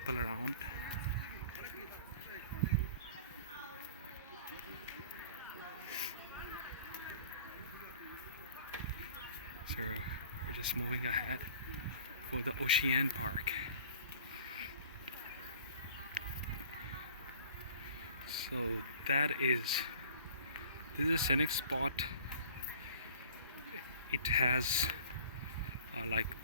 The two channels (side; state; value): both; inverted; correlation -0.47